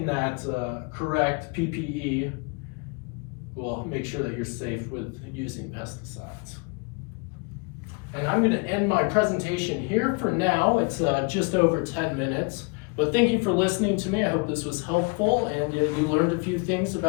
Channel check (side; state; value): right; quieter; 31.7 dB